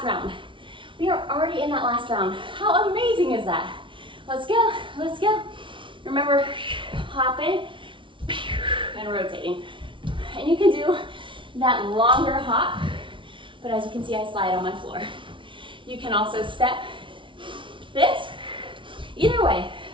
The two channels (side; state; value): left; late; 0.25 ms